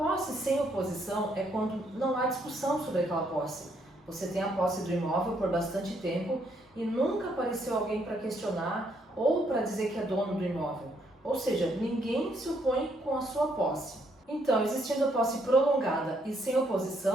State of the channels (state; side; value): normal; both; correlation 0.72